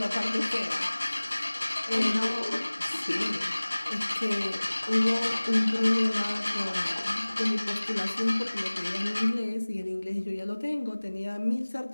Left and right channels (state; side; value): inverted; both; correlation -1.00